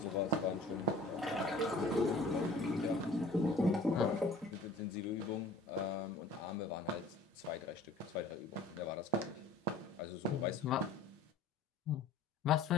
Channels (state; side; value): quieter; right; 3.0 dB